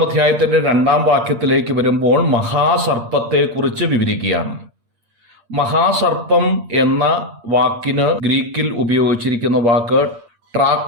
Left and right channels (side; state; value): left; late; 8.6 ms